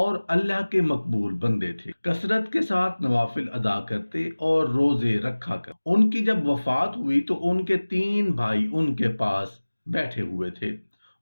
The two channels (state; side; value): inverted; both; correlation -1.00